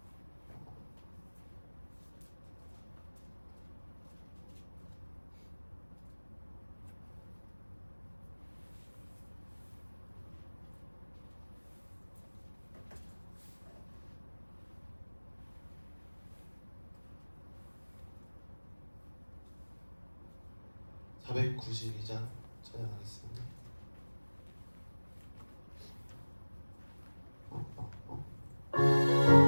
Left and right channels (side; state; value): both; inverted; correlation -1.00